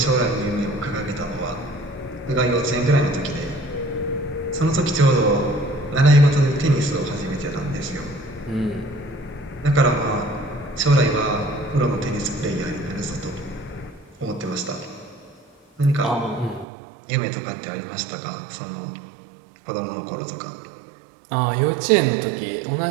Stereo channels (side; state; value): left; drops out; at 16.7 s